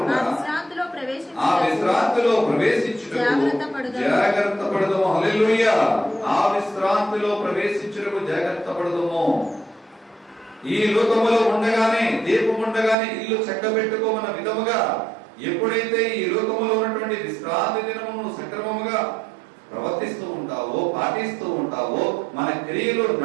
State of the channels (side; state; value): left; drops out; at 13.0 s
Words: ఆ విశ్రాంతిలో ప్రవేశించుటకు జాగ్రత్త పడదము. హల్లెలూయా. ఆ విశ్రాంతిలో ప్రవేశించుటకు జాగ్రత్త పడదము. ఈ లోకములో ఉండగానే, దీపం ఉండగానే ఇల్లు చక్కబెట్టుకోమన్న విధముగా ఎప్పుడైతే ఈ లోకములో ఉన్నటువంటి విశ్రాంతి దినమును సక్రమముగా ప్రవర్తిస్తూ ఉంటావో, పాటిస్తూ ఉంటావో, మన క్రియలు